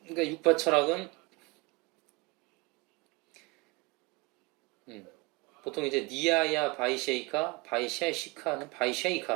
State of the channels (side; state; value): left; quieter; 26.0 dB